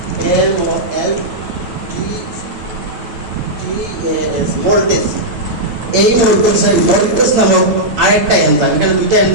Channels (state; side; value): late; left; 8.8 ms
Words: মোল্টেজ। এই মোল্টেজ নামক আরেকটা এনজাইম, এখানে দুইটা